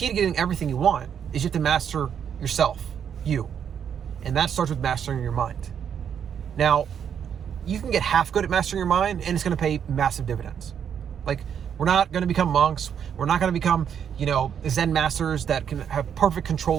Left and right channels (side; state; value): left; quieter; 8.2 dB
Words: to getting everything you want is you have to master yourself, you. And that starts with mastering your mind. Now, you can get half good at mastering your mind, and it's going to pay massive dividends. Like, we're not going to become monks. We're not going to become, Zen masters that can have perfect